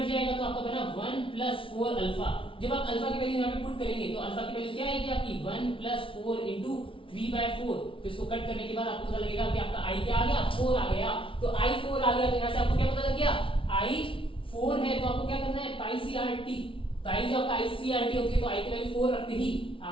जाएगा तो आपका बना 1 प्लस 4 अल्फा। जब आप अल्फा की वैल्यू यहाँ पे पुट करेंगे तो अल्फा की वैल्यू क्या आएगी आपकी 1 प्लस 4 इंटू 3/4। तो इसको कट करने के बाद आपको पता लगेगा कि आपका I क्या आ गया, 4 आ गया। तो I 4 आ गया, तो यहाँ से आपको क्या पता लग गया, I 4 है। तो आपको क्या करना है, पाई CRT। तो I जो आपका IC/RT होती है, तो I की वैल्यू 4 रखते ही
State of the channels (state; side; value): late; right; 0.25 ms